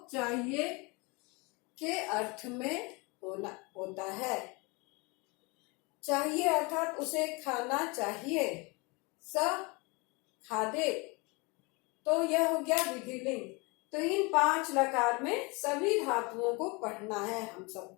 चाहिए के अर्थ में होता है। चाहिए अर्थात उसे खाना चाहिए, स खादे, तो यह हो गया विधिलिंग। तो इन 5 लकार में सभी धातुओं को पढ़ना है हम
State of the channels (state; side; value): quieter; right; 27.7 dB